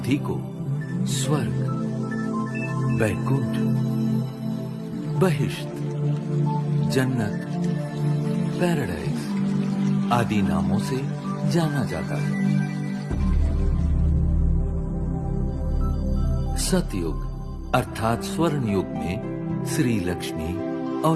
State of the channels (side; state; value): both; identical; correlation 1.00